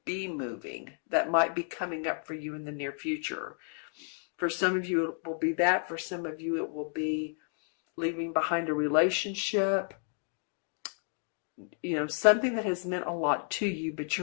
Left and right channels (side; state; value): right; silent; 57 dB below the other